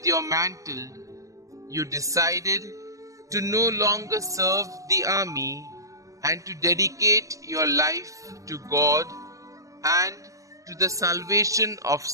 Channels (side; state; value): left; late; 0.16 ms